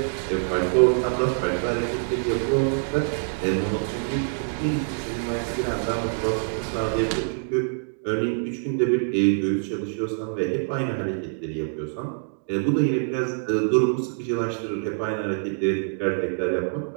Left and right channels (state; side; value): silent; left; digital silence